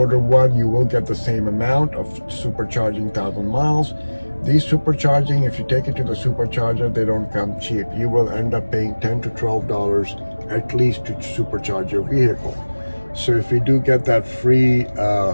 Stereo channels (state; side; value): inverted; both; correlation -1.00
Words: one, you will get the same amount of supercharging 1,000 miles. These supercharging, if you take it to the supercharger, they don't come cheap. You will end up paying $10 to $12 at least to supercharge your vehicle. So if we do get that free